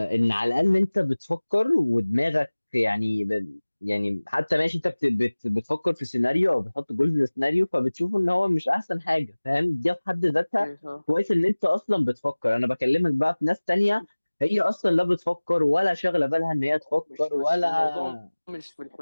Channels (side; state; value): both; inverted; correlation -1.00